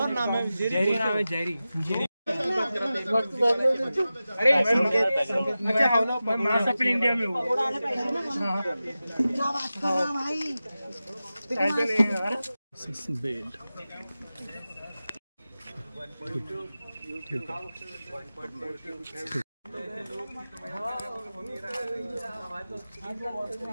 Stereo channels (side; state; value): both; inverted; correlation -0.94